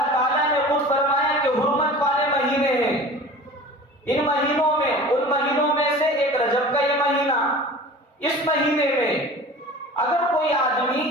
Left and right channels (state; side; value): normal; both; correlation 0.39